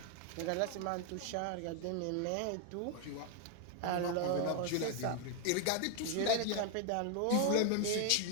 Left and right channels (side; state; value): both; different; correlation 0.01